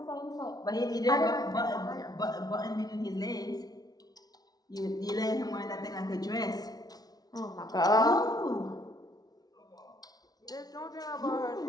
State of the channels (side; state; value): right; late; 0.19 ms